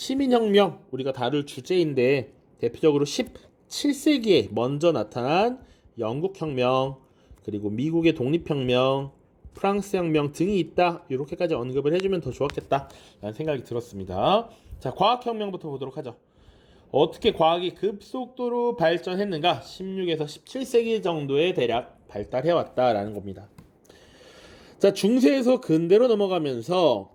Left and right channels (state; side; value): identical; both; correlation 1.00